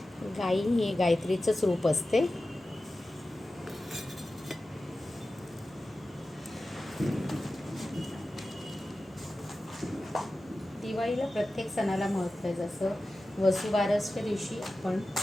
गाई हे गायत्रीचंच रूप असते. दिवाळीला प्रत्येक सणाला महत्त्व आहे. जसं वसुबारसच्या दिवशी आपण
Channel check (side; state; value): both; normal; correlation 0.95